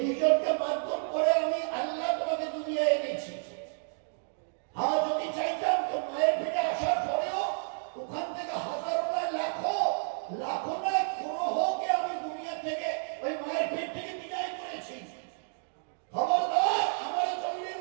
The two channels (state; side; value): silent; left; digital silence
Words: মাধ্যম করে আমি আল্লাহ তোমাকে দুনিয়ায় এনেছি। হ্যাঁ, যদি চাইতাম তো মায়ের পেটে আসার পরেও ওখান থেকে হাজারো নয় লাখো নয় গ্রহকে আমি দুনিয়া থেকে ওই মায়ের পেট থেকে বিদায় করেছি। খবরদার, আমার এই জমিনের